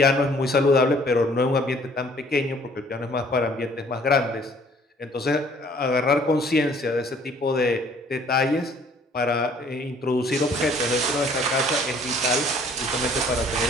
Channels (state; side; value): normal; both; correlation 0.57